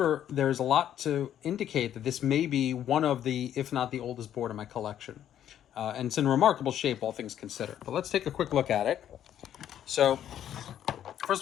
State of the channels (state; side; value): quieter; right; 10.6 dB